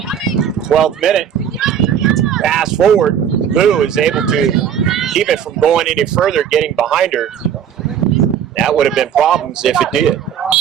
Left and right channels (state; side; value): quieter; left; 8.7 dB